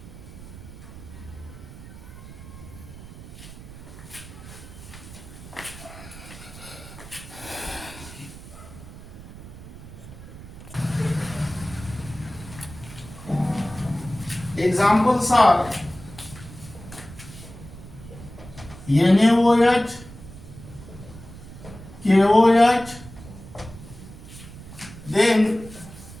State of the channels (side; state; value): right; noise; rumble, 15 dB below the sound